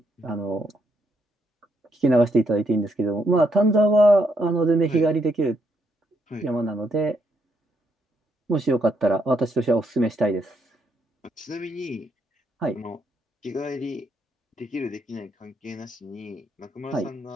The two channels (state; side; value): normal; both; correlation 0.76